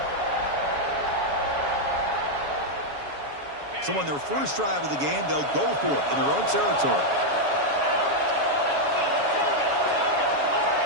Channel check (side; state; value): left; late; 7.1 ms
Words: So on their first drive of the game, they'll go for it in their own territory.